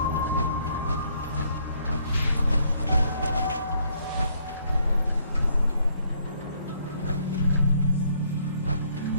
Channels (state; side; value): inverted; both; correlation -0.68